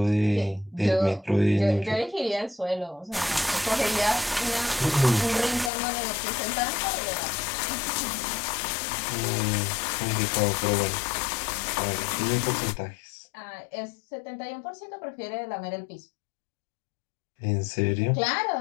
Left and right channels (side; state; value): right; drops out; at 5.7 s